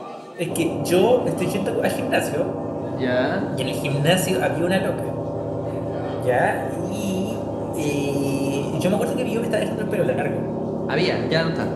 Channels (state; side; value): identical; both; correlation 1.00